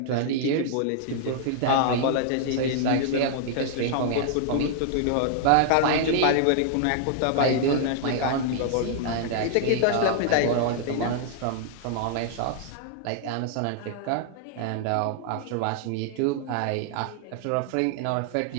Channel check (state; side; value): different; both; correlation -0.01